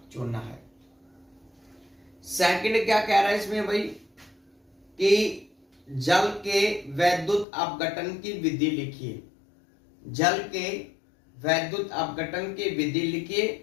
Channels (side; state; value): right; drops out; at 7.5 s